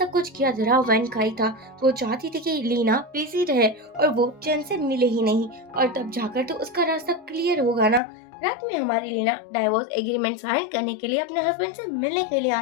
कुछ किया जरा वैन का ही था। वो चाहती थी कि लीना बिजी रहे और वो चैन से मिले ही नहीं, और तब जाकर तो उसका रास्ता क्लियर होगा ना। रात में हमारी लीना डाइवोर्स एग्रीमेंट साइन करने के लिए अपने हस्बैंड से मिलने के लिए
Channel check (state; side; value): drops out; right; at 8.0 s